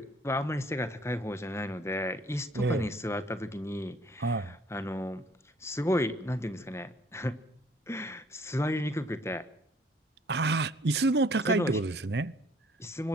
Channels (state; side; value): normal; both; correlation 0.59